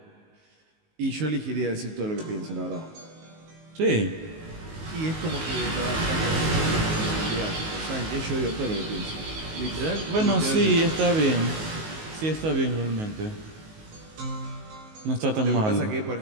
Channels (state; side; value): late; left; 19 ms